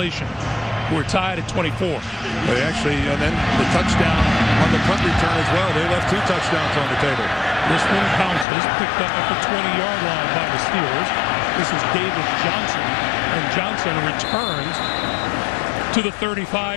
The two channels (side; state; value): right; drops out; at 8.5 s